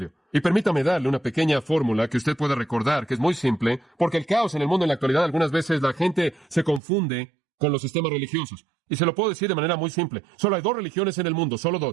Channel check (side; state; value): left; drops out; at 6.8 s